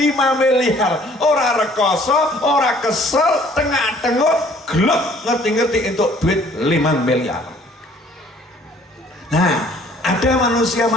miliar. Ora rekoso, ora kesel, tengah-tengah gelap ngerti-ngerti untuk duit 5 miliar. Nah, ada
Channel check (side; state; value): both; normal; correlation 0.57